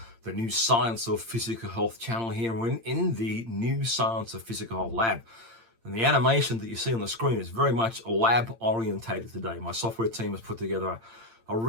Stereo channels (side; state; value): left; late; 8.8 ms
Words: the New Science of Physical Health channel here. We're in the New Science of Physical Health lab. And the animation that you see on the screen is very much lab orientated today. My software team has put together we're